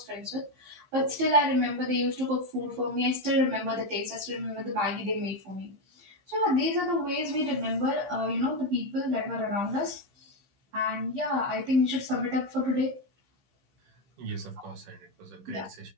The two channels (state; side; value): late; left; 15 ms